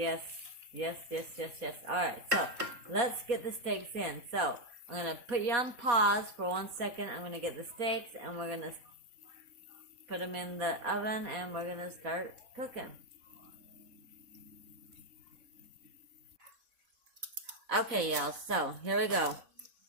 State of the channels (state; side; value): late; left; 4.2 ms